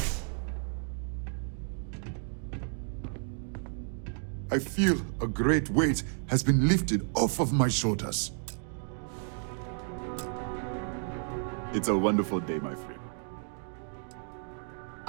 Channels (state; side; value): silent; left; 55 dB below the other